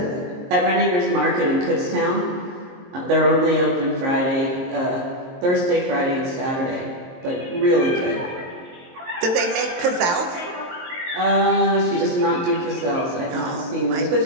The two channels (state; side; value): late; left; 23 ms